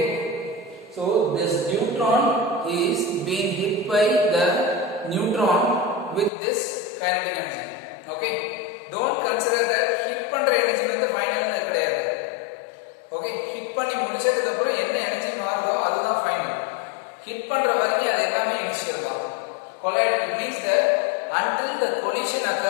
so this neutron is being hit by the neutron with this kinetic energy. Okay, don't consider that hit பண்ற எனர்ஜி வந்து ஃபைனல்னு கிடையாது. ஓகே, ஹிட் பண்ணி முடிச்சதுக்கு அப்புறம் என்ன எனர்ஜி மாறுதோ அதுதான் ஃபைனல். ஹிட் பண்ற வரைக்கும் அது எல்லாமே இனிஷியல் தான். collide, it means that until the collision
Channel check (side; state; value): right; drops out; at 6.3 s